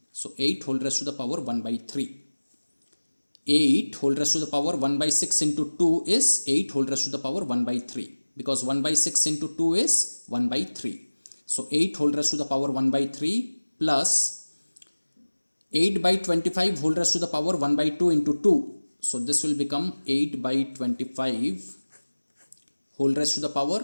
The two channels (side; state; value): both; inverted; correlation -1.00